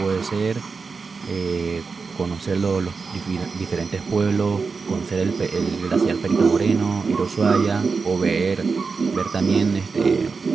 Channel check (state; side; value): quieter; left; 4.8 dB